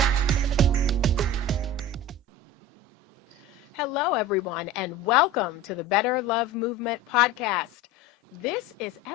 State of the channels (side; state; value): both; normal; correlation 0.34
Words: Hello, everyone, and welcome to the Better Love Movement podcast. This is